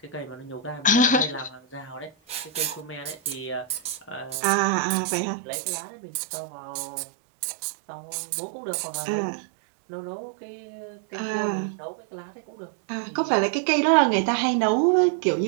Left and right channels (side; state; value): left; drops out; at 4.4 s